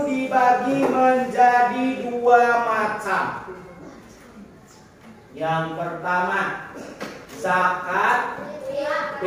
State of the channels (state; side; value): identical; both; correlation 1.00